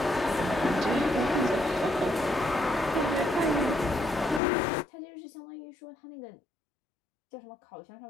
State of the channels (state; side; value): drops out; right; at 4.4 s